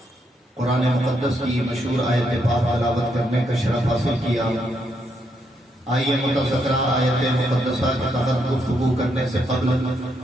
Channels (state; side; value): normal; both; correlation 0.77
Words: قرآن مقدس کی مشہور آیت پاک تلاوت کرنے کا شرف حاصل کیا۔ آئیے متذکرہ آیت مقدسہ کے تحت گفتگو کرنے سے قبل